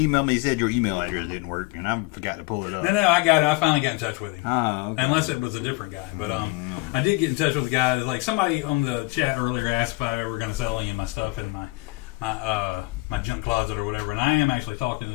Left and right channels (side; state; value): right; quieter; 24.3 dB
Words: me. He said your email address didn't work, and I forgot to pull it up. No, I got it. I finally got in touch with him. Okay. Unless it was a different guy, but I did get in touch with the guy. Like somebody on the chat earlier asked if I ever going to sell any of my stuff in my my junk closet or whatever. And I am actually talking